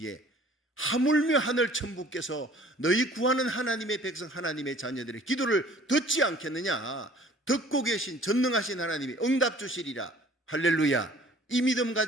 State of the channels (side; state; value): both; normal; correlation 0.52